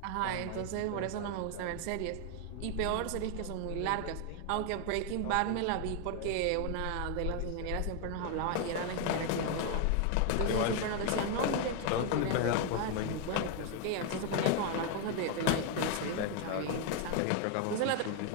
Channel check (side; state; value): both; different; correlation 0.01